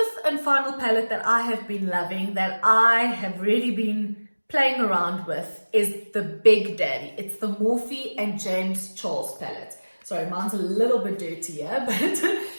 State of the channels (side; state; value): both; inverted; correlation -1.00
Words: and final palette that I have been loving, that I have really been playing around with, is the Big Daddy. It's the Morphe and James Charles palette. So Sorry, mine's a little bit dirty here, but